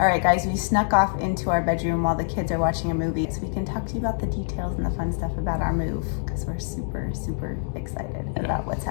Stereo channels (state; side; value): silent; right; digital silence